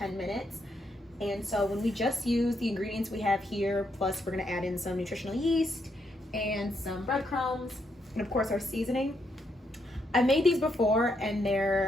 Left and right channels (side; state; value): both; normal; correlation 0.78